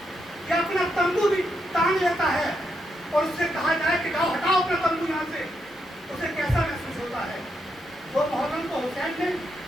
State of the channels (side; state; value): both; normal; correlation 0.81